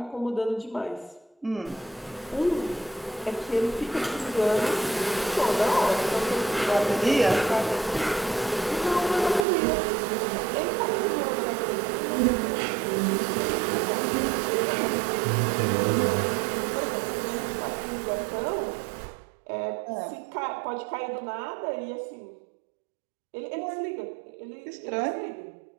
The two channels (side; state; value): left; drops out; at 9.5 s